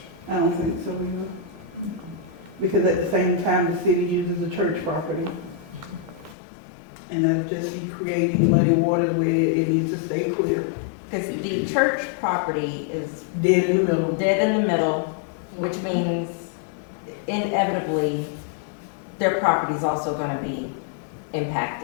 I don't think so either. Because at the same time, the city uses the church property. And that'll just be creating muddy waters where it needs to stay clear. Because the church property is Dead in the middle. dead in the middle, which means inevitably, their property's also gonna be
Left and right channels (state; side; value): drops out; right; at 6.4 s